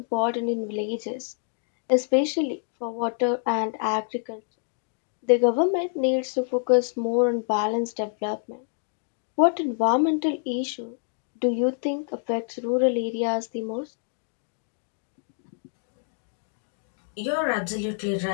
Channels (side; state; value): right; silent; digital silence